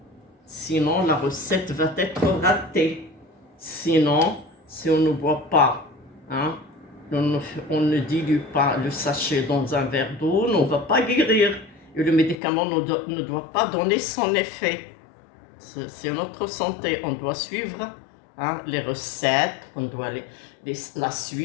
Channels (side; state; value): right; drops out; at 12.4 s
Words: la recette va être ratée. Sinon, si on ne boit pas, on ne dilue pas le sachet dans un verre d'eau, on ne va pas guérir. Et le médicament ne doit pas donner son effet. C'est notre santé. On doit suivre les recettes, on doit la